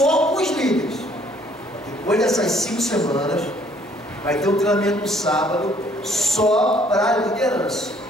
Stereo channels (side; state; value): both; normal; correlation 0.62